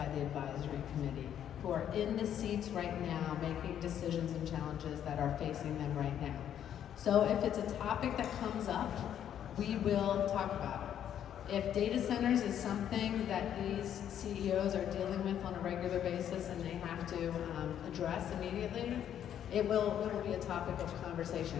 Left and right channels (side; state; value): right; quieter; 9.9 dB